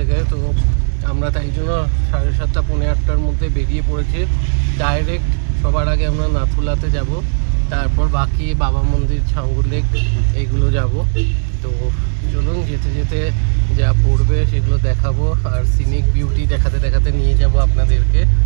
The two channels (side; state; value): left; silent; digital silence